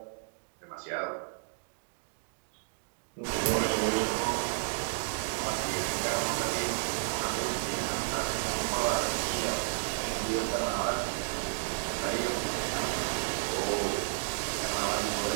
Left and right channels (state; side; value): silent; left; digital silence